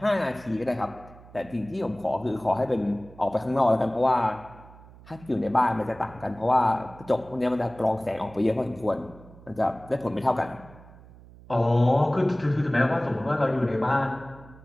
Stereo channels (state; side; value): noise; right; hum, 21 dB below the sound